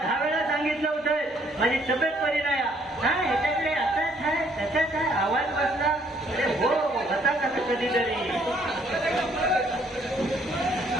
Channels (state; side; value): normal; both; correlation 0.64